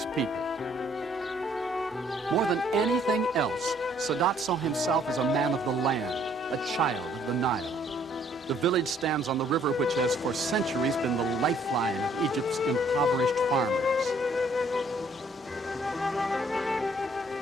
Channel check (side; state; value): both; normal; correlation 0.63